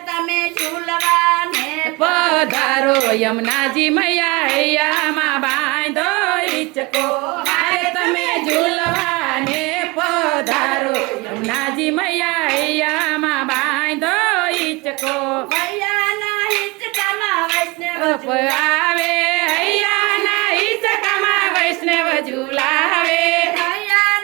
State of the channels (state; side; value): quieter; left; 25.1 dB